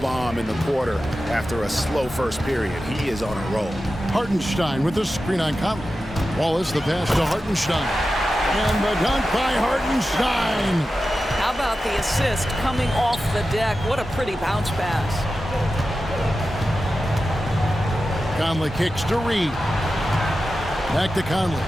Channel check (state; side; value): normal; both; correlation 0.92